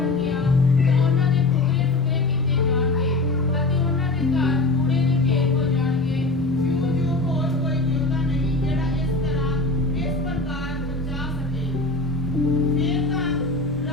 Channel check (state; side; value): quieter; right; 3.1 dB